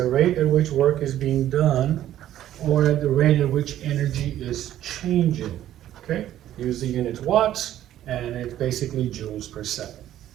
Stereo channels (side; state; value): left; quieter; 12.3 dB